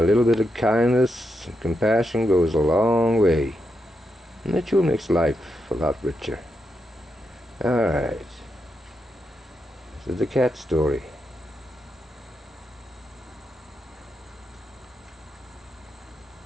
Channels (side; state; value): both; normal; correlation 0.84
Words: little bit of kindness and compassion goes a long way. And that sure makes life a lot richer. Alright. This is the cat story.